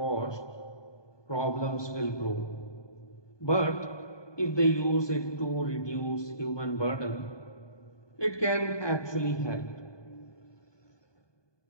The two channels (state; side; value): late; right; 1.2 ms